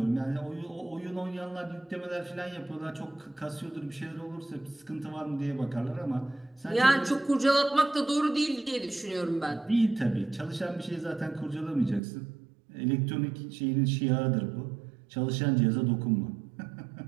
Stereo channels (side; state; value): left; drops out; at 12.0 s